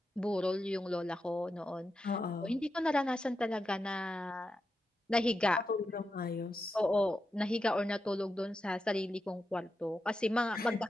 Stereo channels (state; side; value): normal; both; correlation 0.88